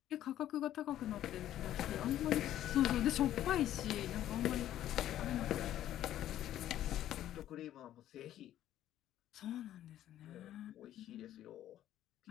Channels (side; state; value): right; quieter; 12.4 dB